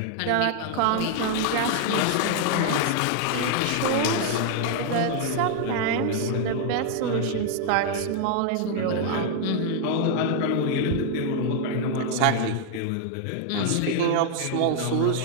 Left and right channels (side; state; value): both; different; correlation 0.00